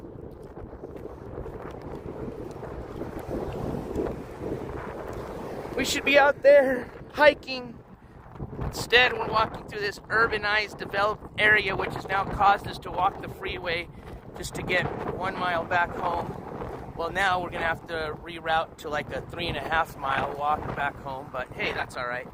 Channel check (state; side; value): identical; both; correlation 1.00